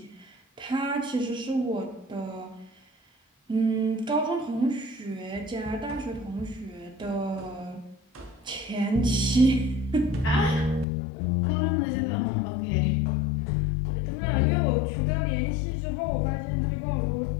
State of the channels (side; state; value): right; drops out; at 10.9 s